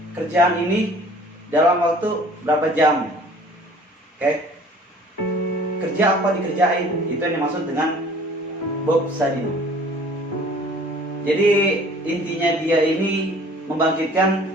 kerjaan ini dalam waktu berapa jam. Oke? Kerja apa dikerjain, itu yang dimaksud dengan Bob Sadino. Jadi intinya dia ini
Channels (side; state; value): both; normal; correlation 0.51